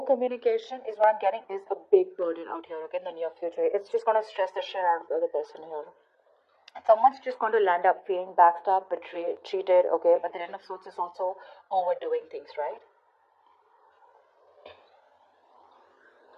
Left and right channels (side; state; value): both; identical; correlation 1.00